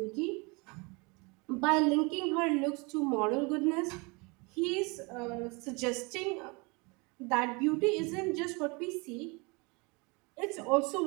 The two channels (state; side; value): quieter; left; 28.7 dB